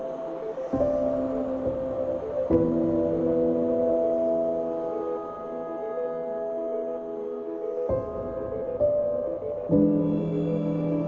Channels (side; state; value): both; identical; correlation 1.00